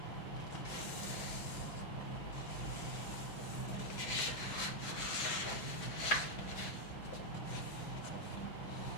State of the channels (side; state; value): right; late; 5.9 ms